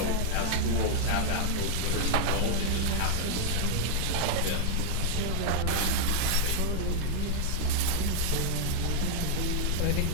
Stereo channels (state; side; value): different; both; correlation -0.01